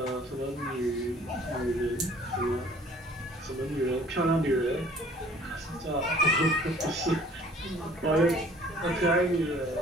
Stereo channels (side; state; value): both; normal; correlation 0.54